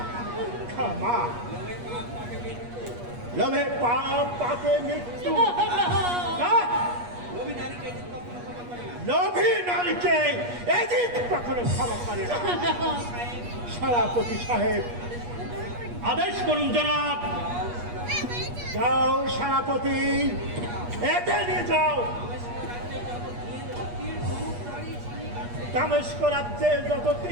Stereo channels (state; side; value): late; left; 8.4 ms